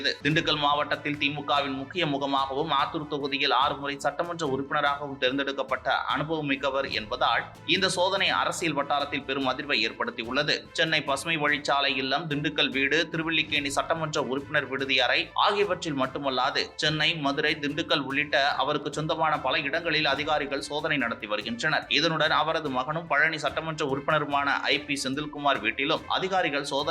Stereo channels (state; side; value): identical; both; correlation 1.00